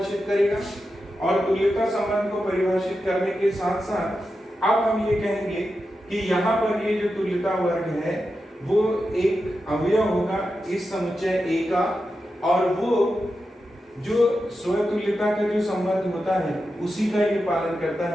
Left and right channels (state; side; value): normal; both; correlation 0.89